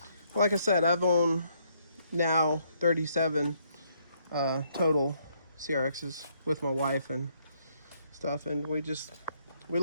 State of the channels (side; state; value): both; inverted; correlation -0.71